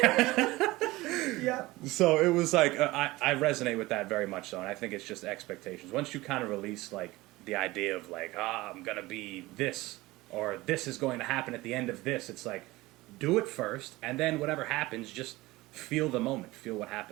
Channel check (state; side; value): quieter; left; 19.8 dB